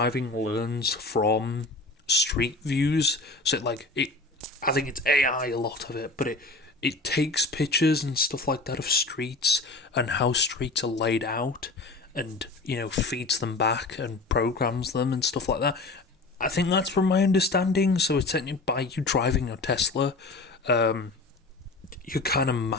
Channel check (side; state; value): right; quieter; 3.4 dB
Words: learns from street views, so I think it's AI, a lot of it, but it takes pictures and stuff like that of streets and how streets are laid out, and feeds them back and programs them and stuff like that. I think that's from my understanding. So it's technically, by you driving your Tesla, you're kind of